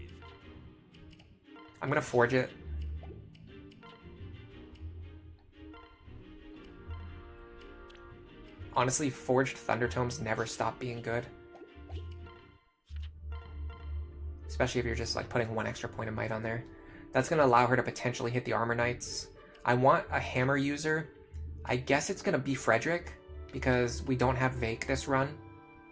I'm gonna forge it. Honestly, forged Thunder tomes never stop being good, especially if you're just like putting one extra point of might on there. That's going to allow her to potentially hit the Armor Knights. I want a Hammer user. I guess it's going to be Frederick, because we don't have Vake this run.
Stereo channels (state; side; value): identical; both; correlation 1.00